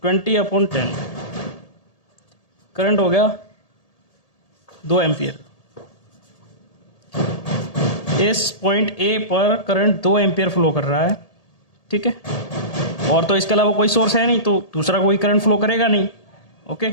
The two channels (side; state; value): right; late; 1.8 ms